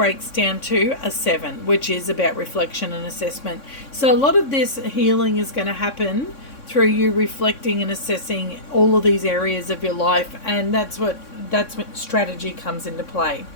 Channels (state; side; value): late; right; 3.6 ms